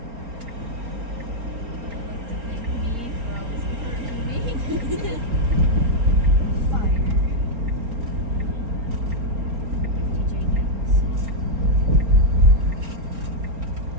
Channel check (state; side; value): late; left; 4.3 ms